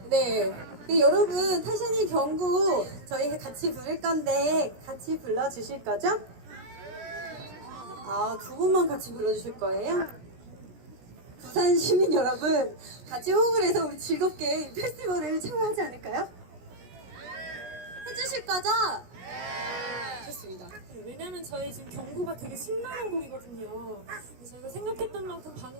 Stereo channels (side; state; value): left; late; 17 ms